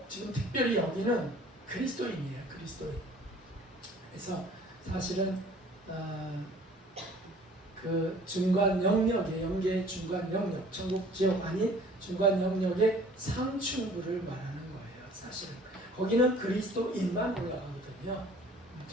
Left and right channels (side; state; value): both; normal; correlation 0.51